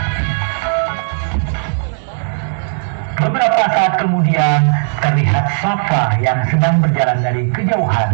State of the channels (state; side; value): silent; left; digital silence